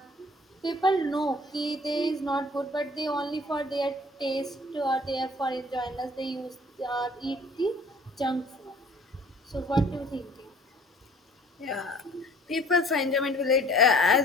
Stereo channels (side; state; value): both; normal; correlation 0.52